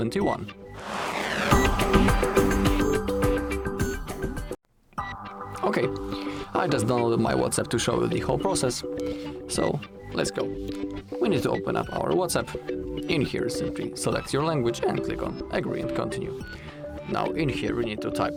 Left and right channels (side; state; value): both; identical; correlation 1.00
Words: Okay, I just downloaded my WhatsApp to show you the whole process, so let's go. We need to open up our WhatsApp. In here simply select your language and click on agree and continue. Now in here we need to